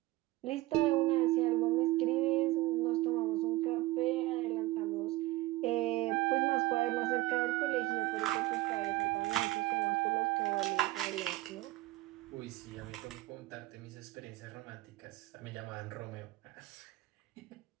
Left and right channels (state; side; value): quieter; left; 18.6 dB